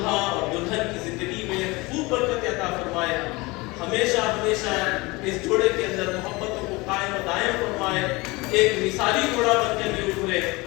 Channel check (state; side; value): quieter; right; 23.6 dB